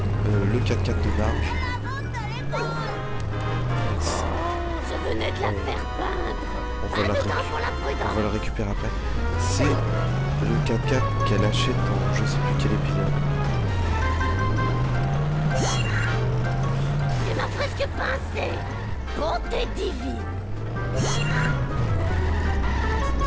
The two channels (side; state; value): both; identical; correlation 1.00